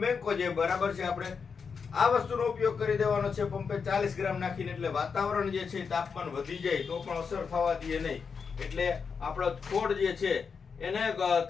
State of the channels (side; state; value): right; quieter; 5.8 dB